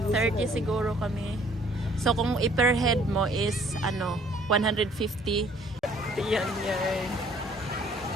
30 siguro kami. So, kung per head mo is 150. Ayan, yan.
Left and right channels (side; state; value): both; normal; correlation 0.59